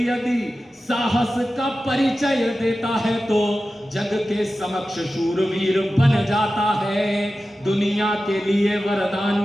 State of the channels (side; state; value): both; normal; correlation 0.94